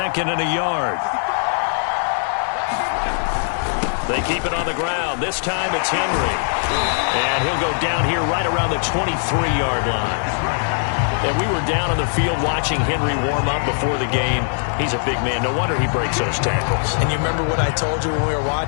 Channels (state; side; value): silent; right; digital silence